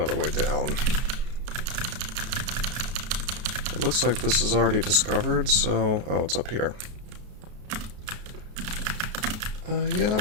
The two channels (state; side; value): late; left; 33 ms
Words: way down. It looks like this is already discovered, so... oh, it's up here. Yeah,